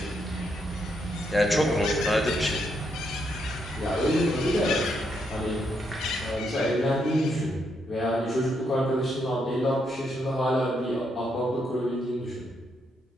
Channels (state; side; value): normal; both; correlation 0.78